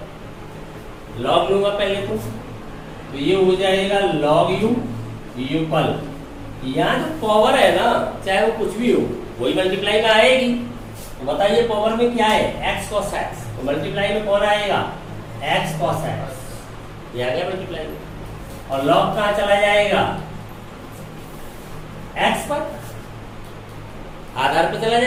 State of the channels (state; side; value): identical; both; correlation 1.00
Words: लॉग लूंगा पहले तो ये हो जाएगा log u इक्वल, यहाँ जो पावर है ना चाहे वो कुछ भी हो वही मल्टीप्लाई में आएगी। तो बताइए पावर में क्या है, x cos x, तो मल्टीप्लाई में कौन आएगा, x cos x, ये आ गया मल्टीप्लाई में, और log कहाँ चला जाएगा, x पर, आधार पे चला